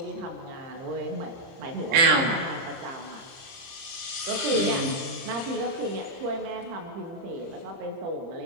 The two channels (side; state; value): left; late; 30 ms